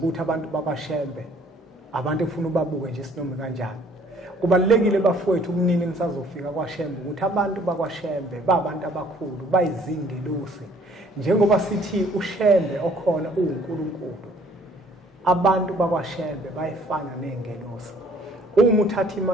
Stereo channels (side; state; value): both; normal; correlation 0.59